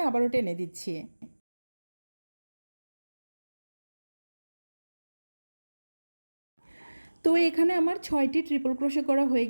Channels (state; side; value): inverted; both; correlation -1.00